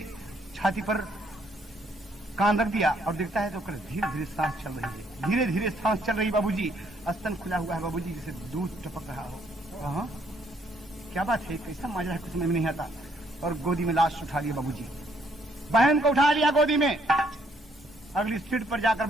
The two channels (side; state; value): both; normal; correlation 0.69